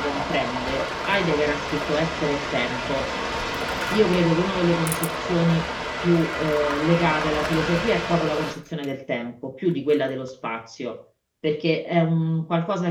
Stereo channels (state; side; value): identical; both; correlation 1.00